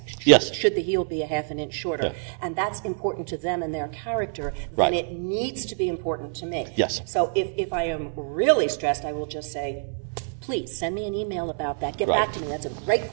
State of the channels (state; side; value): silent; left; 58 dB below the other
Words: should the heel be a half an inch shorter? And that's important to them and their character, then it needs to be important to me. So if I am really stressed, I will just say, please send me an email about that. Get back to me. That's a great